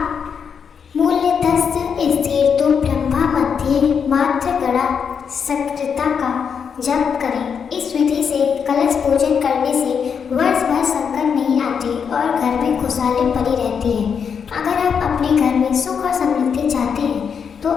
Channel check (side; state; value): right; quieter; 6.8 dB